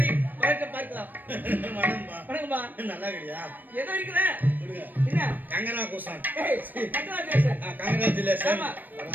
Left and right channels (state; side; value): late; left; 0.089 ms